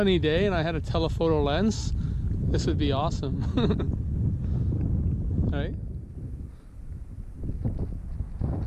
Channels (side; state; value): both; identical; correlation 1.00